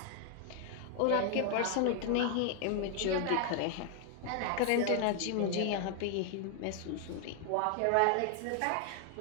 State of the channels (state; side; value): different; both; correlation 0.00